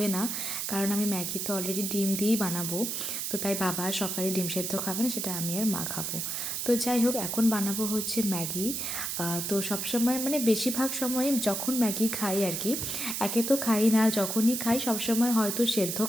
না, কারণ আমি ম্যাগি তো অলরেডি ডিম দিয়েই বানাবো। তো তাই বাবা সকালে ডিম সিদ্ধ খাবে না, সেটা আমি আর মা খাবো। তো যাই হোক, এখন বানাবো হচ্ছে ম্যাগি। তো সবসময় মানে বেশিরভাগ সময় যখন ম্যাগি খাই আর কি, একে তো খাই না, যখনই খাই সবসময় হয়তো সেদ্ধ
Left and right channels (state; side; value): noise; right; hiss, 2 dB below the sound